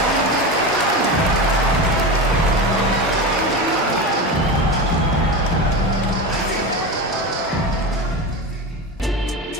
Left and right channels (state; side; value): normal; both; correlation 0.22